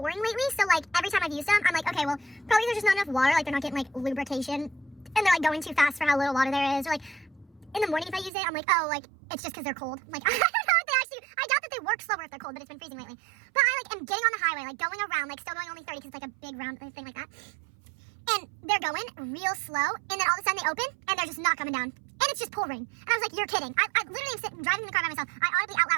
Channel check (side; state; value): left; drops out; at 8.3 s